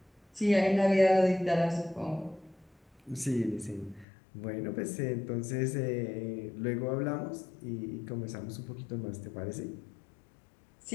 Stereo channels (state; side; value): drops out; right; at 4.0 s